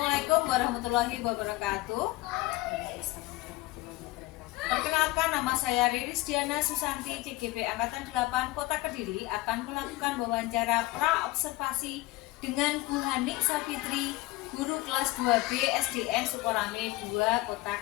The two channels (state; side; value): quieter; right; 19.7 dB